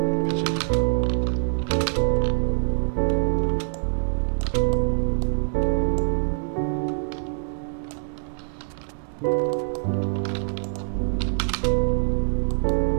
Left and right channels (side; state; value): left; silent; digital silence